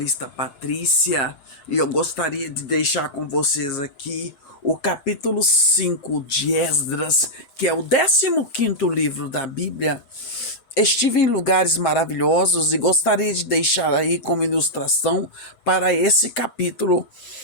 Patrícia e eu gostaria de deixar com vocês aqui o capítulo 5 de Esdras, que é o 15º livro da Bíblia. Estive em lugares maravilhosos e gostaria de deixar aí como ilustração para esse capítulo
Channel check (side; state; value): right; late; 7.3 ms